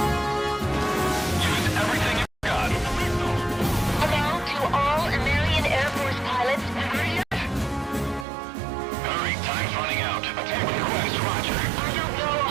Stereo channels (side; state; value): left; drops out; at 8.2 s